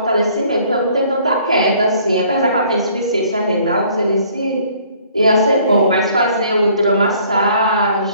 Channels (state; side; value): inverted; both; correlation -0.58